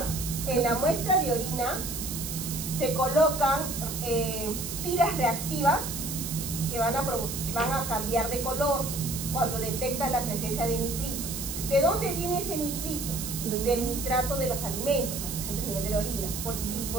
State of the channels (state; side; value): noise; right; hiss, 6 dB below the sound